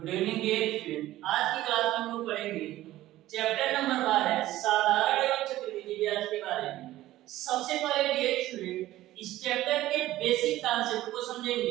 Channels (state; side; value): quieter; left; 15.3 dB